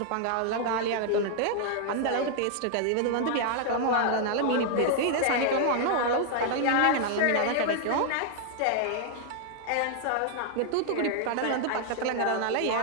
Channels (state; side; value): different; both; correlation 0.00